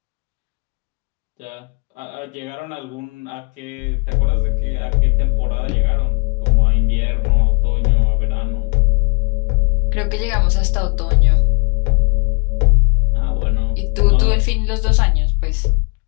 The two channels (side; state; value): right; quieter; 33.3 dB